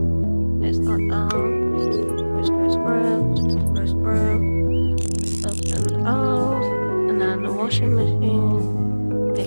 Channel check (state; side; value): inverted; both; correlation -1.00